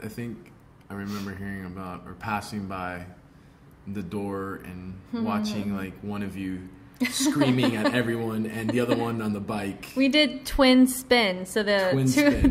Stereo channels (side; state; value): both; identical; correlation 1.00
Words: think I remember hearing about or passing by the door and watching like one of you screaming at everyone and the other one on the bike. We did twin spin. So the